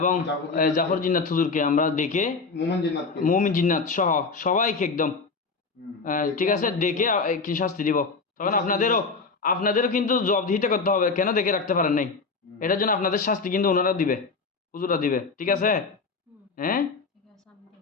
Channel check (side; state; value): right; quieter; 4.4 dB